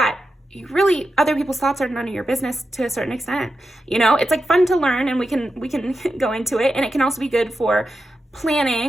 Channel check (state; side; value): normal; both; correlation 0.89